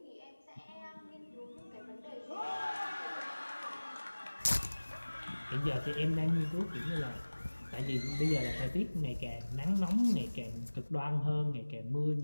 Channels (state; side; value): inverted; both; correlation -1.00